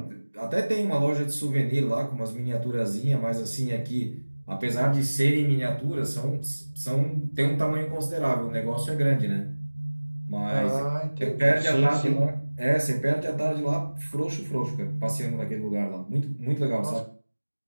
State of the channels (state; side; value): inverted; both; correlation -1.00